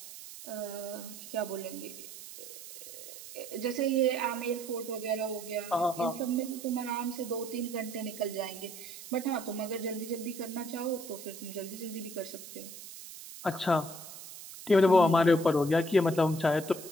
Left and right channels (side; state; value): right; noise; hiss, 13 dB below the sound